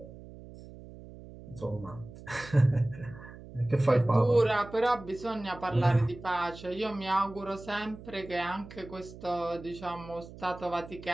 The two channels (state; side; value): noise; right; hum, 16 dB below the sound